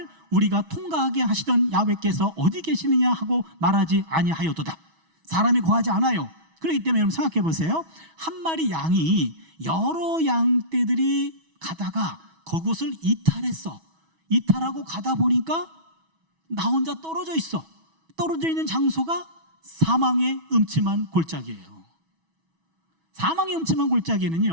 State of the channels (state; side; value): late; left; 6.2 ms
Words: 우리가 통과하게 하시던 야훼께서 어디 계시느냐 하고 말하지 아니하였도다. 사람이 거하지 않아요. 그렇기 때문에 여러분 생각해 보세요. 한 마리 양이 여러 양떼들이 가다가 그곳을 이탈하고 가다 보니까 나 혼자 떨어져 있어. 떨어져 있는 장소가 사망의 음침한 골짜기예요. 사망의 음침한